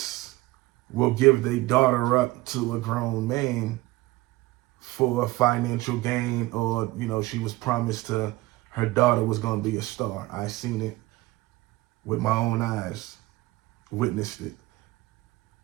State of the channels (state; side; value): quieter; left; 19.5 dB